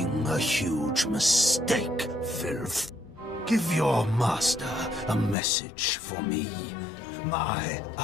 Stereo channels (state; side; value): drops out; right; at 5.4 s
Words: a huge mistake, filth. Give your master a message for me. My